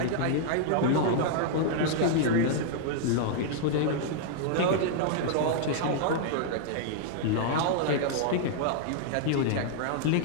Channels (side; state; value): both; different; correlation -0.01